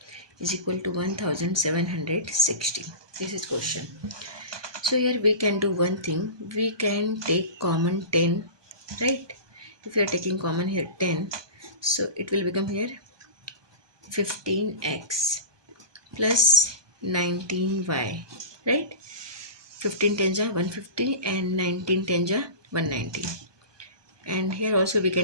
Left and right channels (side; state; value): left; late; 1.2 ms